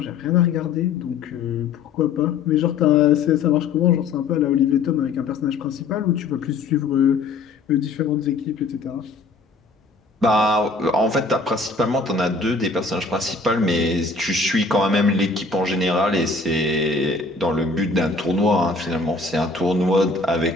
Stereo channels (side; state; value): right; quieter; 4.1 dB